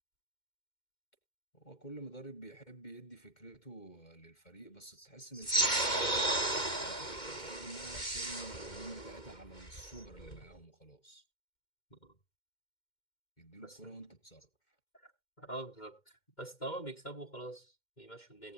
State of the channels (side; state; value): right; late; 2.1 ms